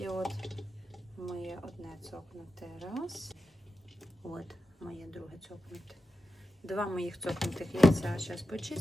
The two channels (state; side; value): normal; both; correlation 0.91